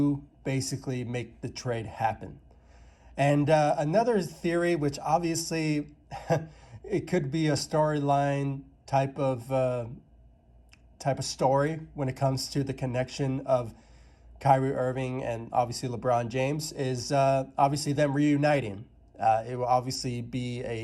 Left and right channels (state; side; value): identical; both; correlation 1.00